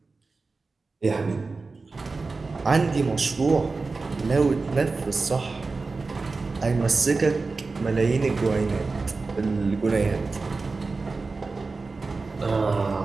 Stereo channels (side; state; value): left; quieter; 3.9 dB